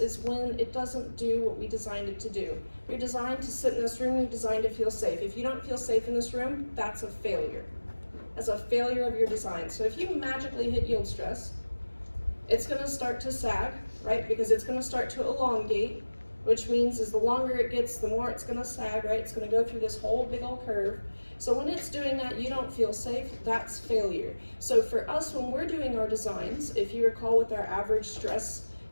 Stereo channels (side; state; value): both; inverted; correlation -1.00